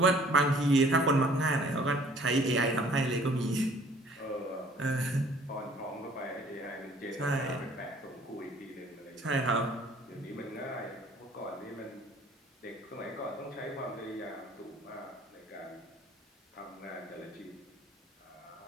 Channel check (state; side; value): normal; both; correlation 0.55